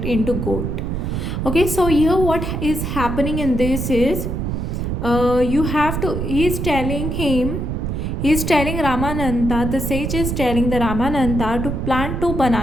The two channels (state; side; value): noise; right; rumble, 2 dB below the sound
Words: into gold. Okay, so here what is happening in this is he's telling Ramananda, the sage is telling the Ramananda to plant 2